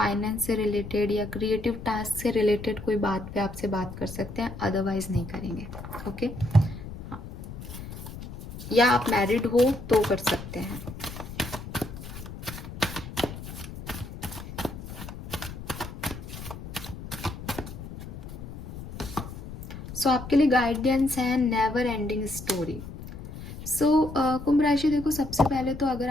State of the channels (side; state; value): left; noise; rumble, 11 dB below the sound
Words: से रिलेटेड या क्रिएटिव टास्क से रिलेटेड कोई बात पे आपसे बात कर सकते हैं, अदरवाइज नहीं करेंगे। ओके, हाँ, या आप मैरिड हो तो कर सकते हैं। सो आपके लिए गाइडेंस है नेवर एंडिंग स्टोरी। सो कुंभ राशि, देखो सबसे पहले तो अगर